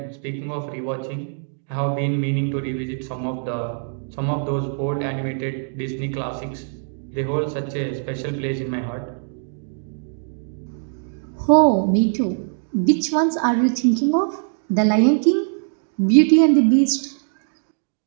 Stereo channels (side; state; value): left; silent; digital silence